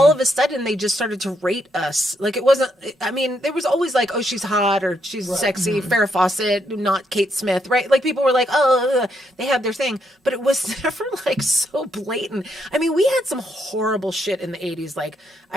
all them. of a sudden they just started to rate us. Like it wasn't, I mean, there was always like, oh, she's hot or she's sexy, Farrah Fawcett, not Kate Smith, right? Like people were like, oh, they had their thing. But it was never like so blatant. I mean, we had some horrible shit in the 80s. Like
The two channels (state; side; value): normal; both; correlation 0.77